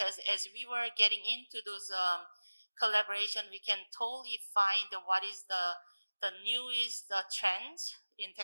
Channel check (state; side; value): inverted; both; correlation -1.00